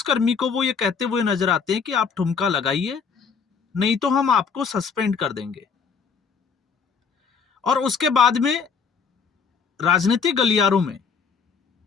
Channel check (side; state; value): right; quieter; 5.9 dB